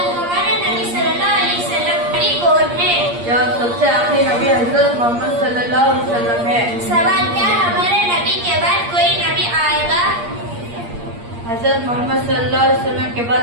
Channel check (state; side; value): late; left; 8.6 ms